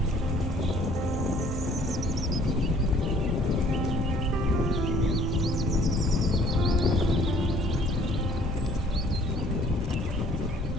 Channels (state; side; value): normal; both; correlation 0.57